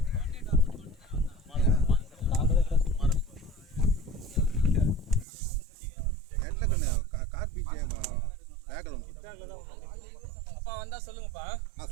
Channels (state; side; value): drops out; left; at 5.2 s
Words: அப்பா வந்தா சொல்லுங்கப்பா. நான்